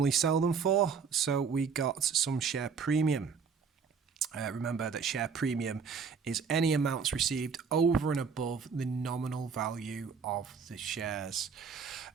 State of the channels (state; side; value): quieter; left; 5.9 dB